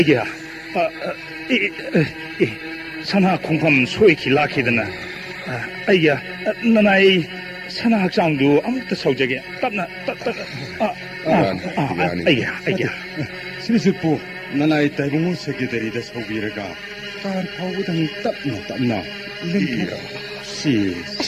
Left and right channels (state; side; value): identical; both; correlation 1.00